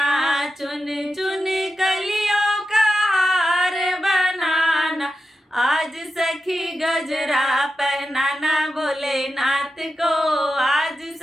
चुन चुन कलियों का हार बनाना, आज सखी गजरा पहनाना भोलेनाथ को, आज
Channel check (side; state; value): both; normal; correlation 0.90